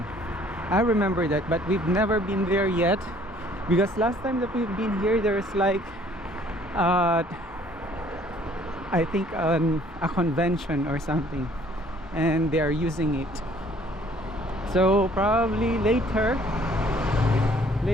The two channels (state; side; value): normal; both; correlation 0.58